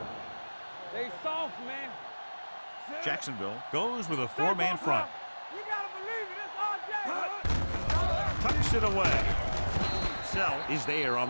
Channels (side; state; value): both; inverted; correlation -1.00